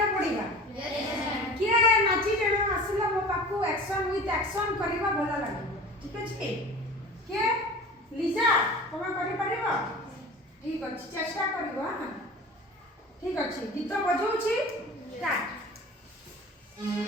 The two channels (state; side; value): normal; both; correlation 0.39